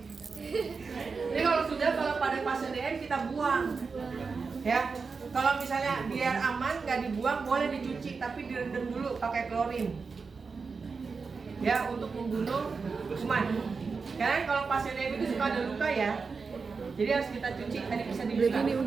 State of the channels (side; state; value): left; quieter; 4.8 dB